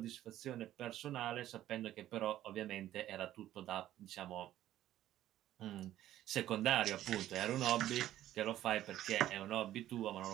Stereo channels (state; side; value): quieter; left; 13.1 dB